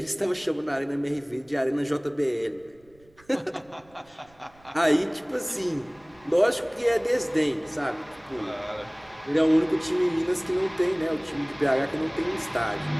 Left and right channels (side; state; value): right; noise; rumble, 30 dB below the sound